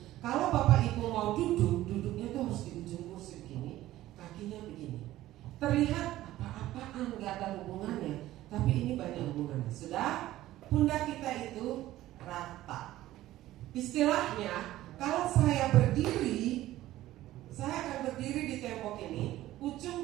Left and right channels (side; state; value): left; quieter; 15.1 dB